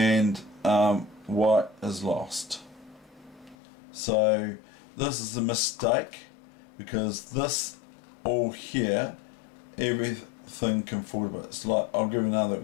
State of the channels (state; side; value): drops out; right; at 3.6 s